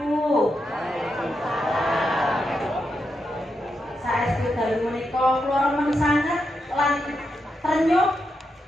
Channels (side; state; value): both; normal; correlation 0.85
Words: Saestu dalu menika kula remen sanget lan trenyuh